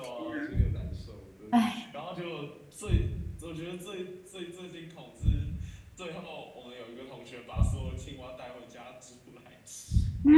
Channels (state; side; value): identical; both; correlation 1.00